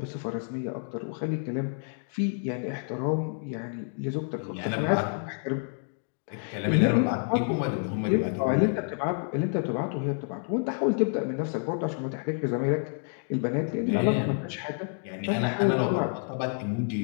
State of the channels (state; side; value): silent; right; 59 dB below the other